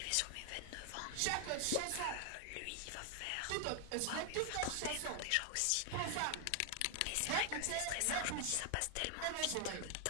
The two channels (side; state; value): both; different; correlation 0.00